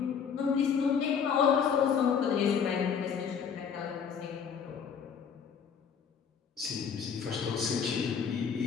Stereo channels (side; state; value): right; quieter; 6.9 dB